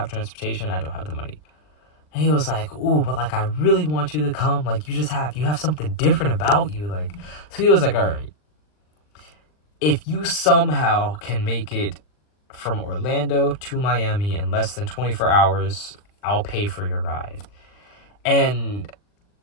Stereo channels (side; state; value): right; late; 39 ms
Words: transportation. I don't have the money. And he was like, ooh, but like, I really want you to come. Like, you have something different about you. Like, so he was like, all right, if you somehow can make it from Orlando to Miami in less than 24 hours, I'll pay for your ride. And